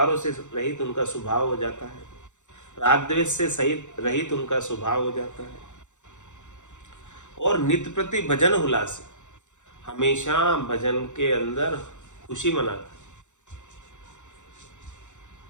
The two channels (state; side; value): late; right; 0.85 ms